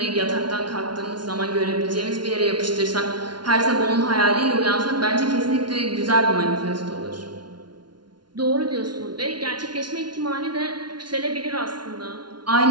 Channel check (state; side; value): late; left; 0.70 ms